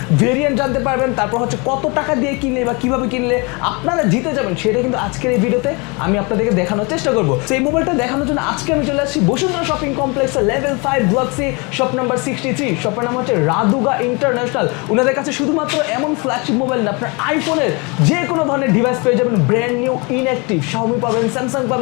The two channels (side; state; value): right; quieter; 29.3 dB